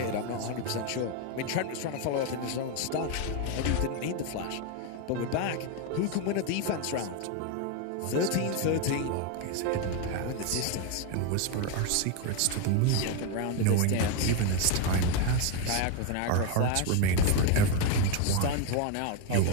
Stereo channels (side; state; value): both; different; correlation 0.02